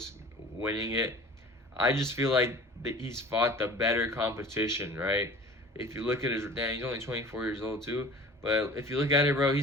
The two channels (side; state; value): both; normal; correlation 0.42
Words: winning it. I just feel like he's fought the better competition, right? If you look at he's only 24 years old too, but if you look at it, bro,